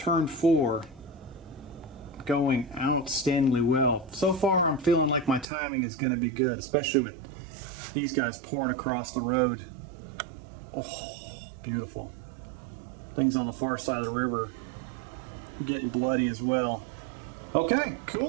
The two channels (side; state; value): left; drops out; at 5.5 s